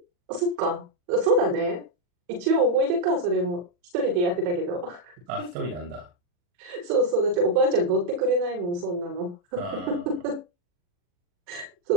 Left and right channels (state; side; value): late; left; 40 ms